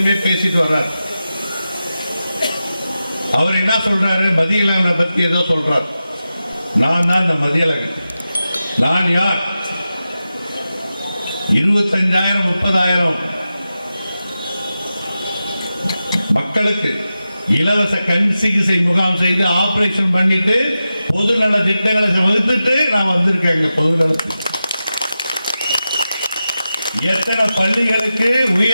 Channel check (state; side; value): inverted; both; correlation -0.92